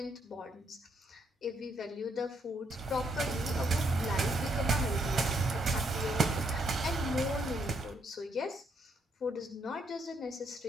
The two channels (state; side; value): normal; both; correlation 0.74